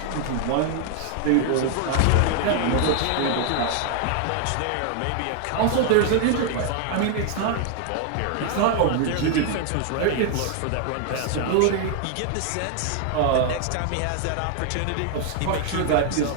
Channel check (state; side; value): different; both; correlation 0.00